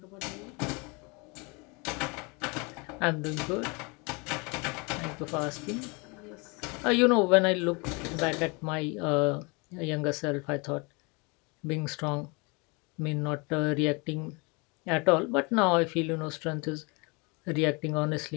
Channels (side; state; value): right; quieter; 29.6 dB